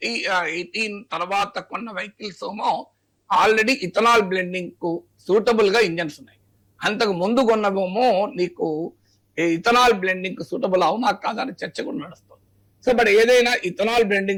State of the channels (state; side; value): identical; both; correlation 1.00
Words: తర్వాత కొన్న వెహికల్స్ ఏమో ఆల్రెడీ ఇథనాల్ బ్లెండింగ్ కు సూటబుల్ గా ఇంజన్స్ ఉన్నాయి. అంతకు ముందు కొన్నవేమో నీకు ఇథనాల్ బ్లెండింగ్ కు సూటబుల్ అవునా కాదని చర్చ కూడా నడుస్తుంది. సో బట్ ఏదైనా ఇథనాల్